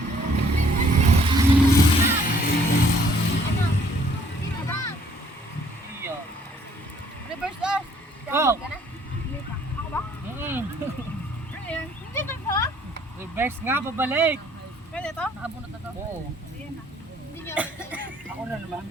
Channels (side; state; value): both; normal; correlation 0.61